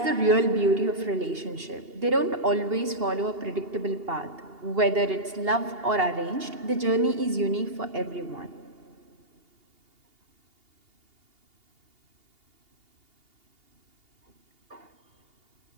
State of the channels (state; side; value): late; left; 2.8 ms